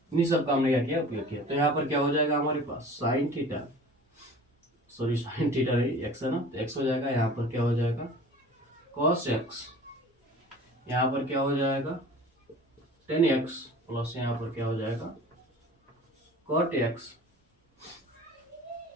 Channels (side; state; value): both; normal; correlation 0.43